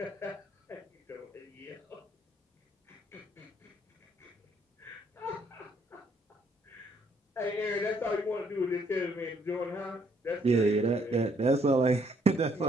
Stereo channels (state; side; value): normal; both; correlation 0.68